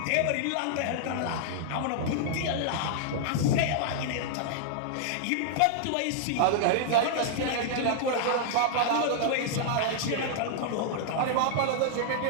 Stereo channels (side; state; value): both; different; correlation -0.01